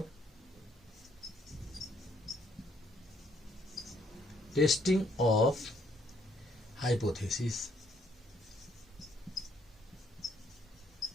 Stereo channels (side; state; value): both; normal; correlation 0.69